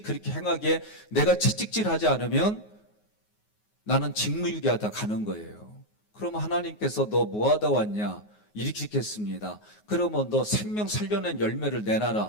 그렇게 행하게, 내가 채찍질하지 않으면 나는 직무유기하다 가는 거예요. 그러면 하나님께서 너 뭐하다 왔냐? 이렇게 읽겠습니다. 그러면 너 생명 살려낸 열매를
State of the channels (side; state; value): right; late; 9.5 ms